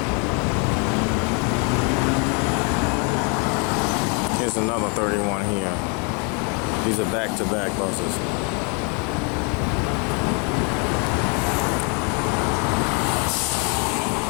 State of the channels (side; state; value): right; quieter; 34.6 dB